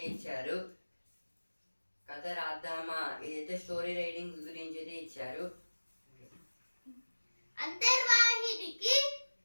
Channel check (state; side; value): inverted; both; correlation -1.00